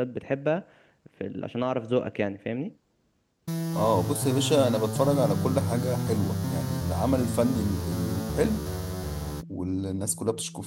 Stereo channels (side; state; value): both; identical; correlation 1.00